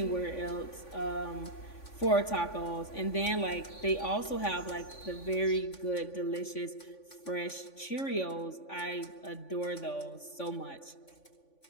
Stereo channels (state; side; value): late; right; 3.5 ms